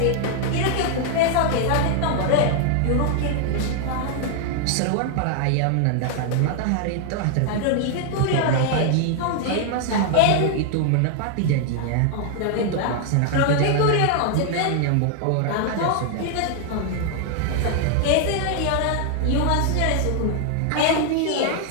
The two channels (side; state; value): both; different; correlation 0.00